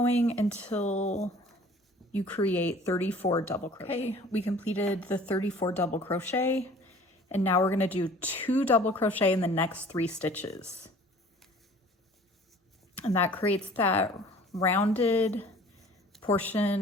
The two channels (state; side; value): normal; both; correlation 0.49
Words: until you create 34 double crochet. Okay, we completed the 34 double crochet, and now we're gonna do 2 double crochet in the next 3 stitches. And that creates that rounded